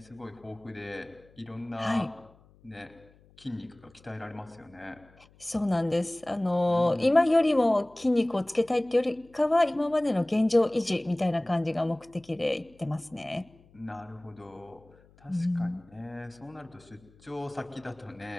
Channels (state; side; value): noise; left; hum, 28 dB below the sound